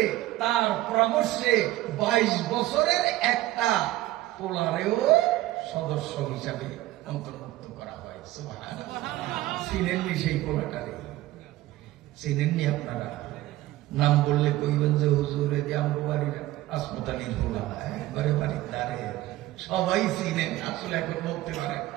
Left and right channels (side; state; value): left; quieter; 16.4 dB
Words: তার পরামর্শে 22 বছরের একটা পোলারেও সদস্য হিসাবে অন্তর্ভুক্ত করা হয়। সুবহানাল্লাহ। চিনেননি সেই পোলাটারে? চিনেননি আপনারা? নাম বললে কইবেন যে হুজুরে যে আমার বাড়ির হাসপাতালির হোলা, একবারে বাড়ির দ্বারে সবাই চিনেন, আসলে এখন বলতে পারেন